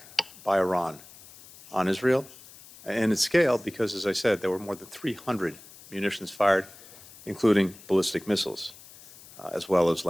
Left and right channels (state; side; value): noise; left; hiss, 20 dB below the sound